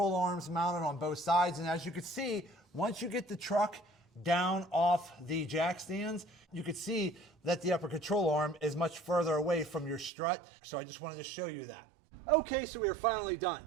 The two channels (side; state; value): left; drops out; at 10.1 s